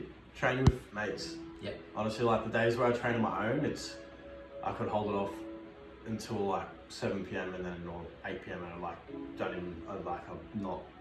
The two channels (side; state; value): both; identical; correlation 1.00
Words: training with mates. Honestly, like the days where I train on my own, I could hold it off until like 7 p.m. and then or 8 p.m. and I'm not